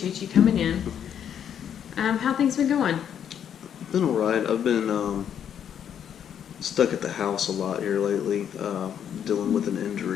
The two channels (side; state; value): right; quieter; 8.9 dB